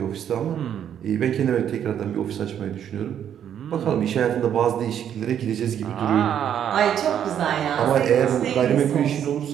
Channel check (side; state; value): left; quieter; 9.5 dB